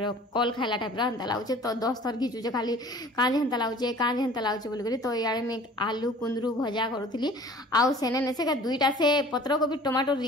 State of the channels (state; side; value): normal; both; correlation 0.47